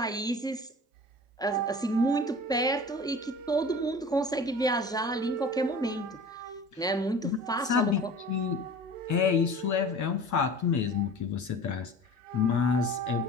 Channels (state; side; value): normal; both; correlation 0.40